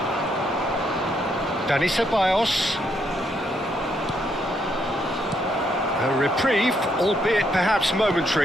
Dani Ceballos. A reprieve, albeit perhaps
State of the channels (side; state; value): both; normal; correlation 0.75